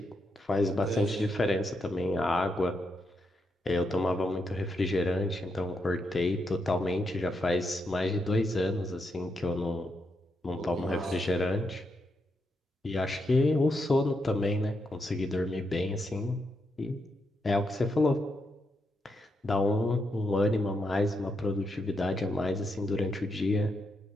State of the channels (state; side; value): normal; both; correlation 0.82